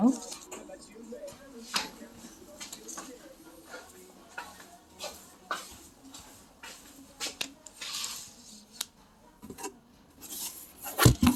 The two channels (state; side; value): identical; both; correlation 1.00